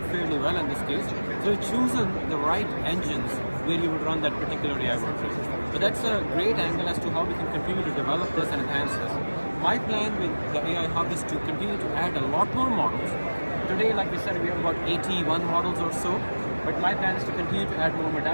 fairly well in this case, so we've chosen the right engines where you would run that particular AI workload. So that's a great angle as to how we can continue to develop this and enhance this. My plan with the AI Hub is to continue to add a lot more models, Today, like we said, we have about 81 models or so, but my plan is to continue to add more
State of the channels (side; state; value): both; inverted; correlation -1.00